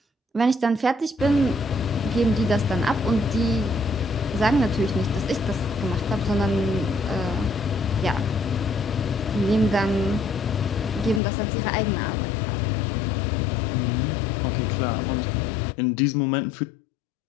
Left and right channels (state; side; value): drops out; right; at 11.2 s